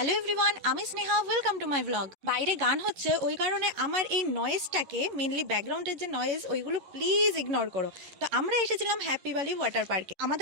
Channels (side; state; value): left; late; 11 ms